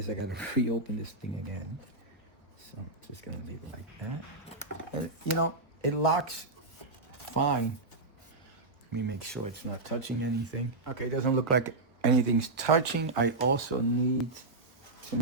I gotta reopen this thing again. So I'm just gonna leave it like that. And, you know, it locks fine. Let me make sure it's not touching anything. Okay, it doesn't look like anything's touching. I also need to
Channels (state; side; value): quieter; left; 3.2 dB